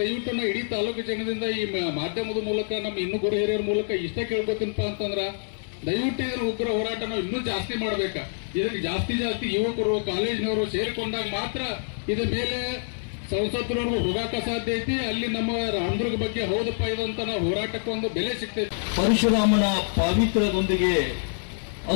ನಾವು ಇಡೀ ತಾಲೂಕು ಜನದಿಂದ ಈ ಮಾಧ್ಯಮದ ಮೂಲಕ ನಮ್ಮ ಇನ್ನೂ ಗುರು ಹಿರಿಯರ ಮೂಲಕ ಇಷ್ಟೇ ಕೇಳ್ಕೊತೀನಪ್ಪ ಅಂತಂದ್ರ ದಯವಿಟ್ಟು ಇದನ್ನ ಉಗ್ರ ಹೋರಾಟ ನಾವು ಇನ್ನೂ ಜಾಸ್ತಿ ಮಾಡ್ಬೇಕ. ಇದಕ್ಕೆ ಜಾಸ್ತಿ ಯುವಕರು ಕಾಲೇಜಿನವರು ಸೇರಿಕೊಂಡಾಗ ಮಾತ್ರ ಇದ್ರ ಮೇಲೆ ಸಂಸತ್ತರವ್ರಿಗೂ ಹೋಗಾಕ ಸಾಧ್ಯ ಐತಿ. ಅಲ್ಲಿ ನಮ್ಮ ರಾಮದುರ್ಗ ಬಗ್ಗೆ ಹೌದಪ್ಪ ಇದಂತ ನಾವು ಹೋರಾಟಕ್ಕೆ ಒಂದು ಬೆಲೆ ಸಿಗ್ತೈತಿ. ಪರಶುರಾಮನ ಪಾವಿತ್ರ್ಯದೊಂದಿಗೆ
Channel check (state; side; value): silent; right; digital silence